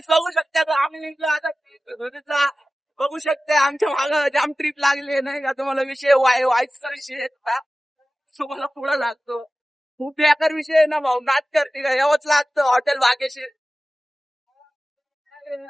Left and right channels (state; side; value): normal; both; correlation 0.96